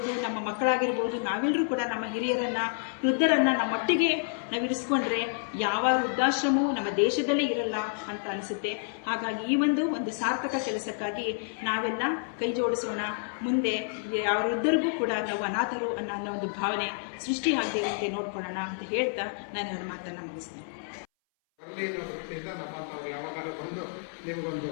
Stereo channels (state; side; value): silent; right; 58 dB below the other